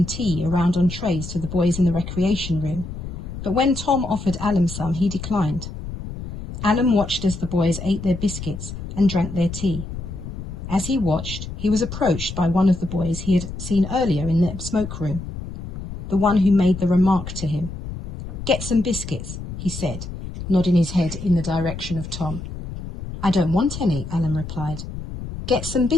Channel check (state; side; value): noise; left; rumble, 9 dB below the sound